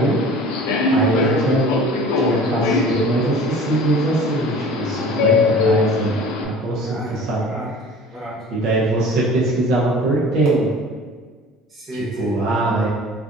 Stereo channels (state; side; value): normal; both; correlation 0.43